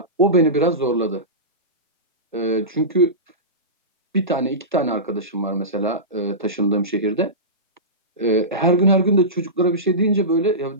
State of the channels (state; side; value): normal; both; correlation -0.19